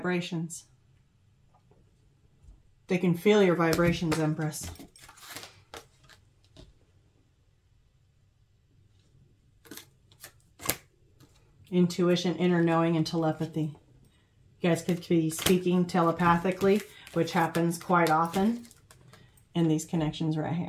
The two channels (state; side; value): identical; both; correlation 1.00